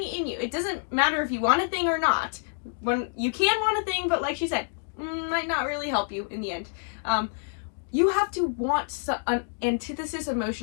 in you. It doesn't matter if you want a thing or not. When you can want a thing, but like she said, might not really help you in the end. You have to want an antithesis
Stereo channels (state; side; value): silent; right; 60 dB below the other